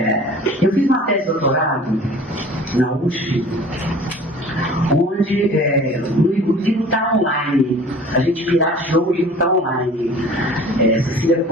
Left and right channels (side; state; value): both; normal; correlation 0.45